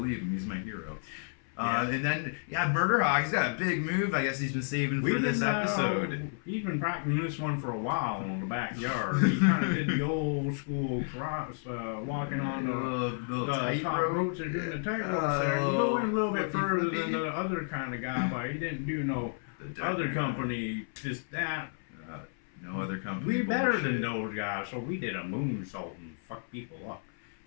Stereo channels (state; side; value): silent; right; 57 dB below the other